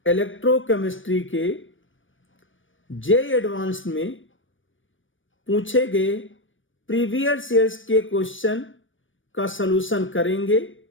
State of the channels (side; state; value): right; late; 0.57 ms